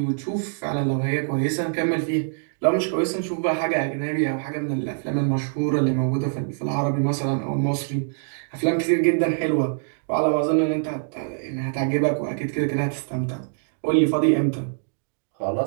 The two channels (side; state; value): left; silent; digital silence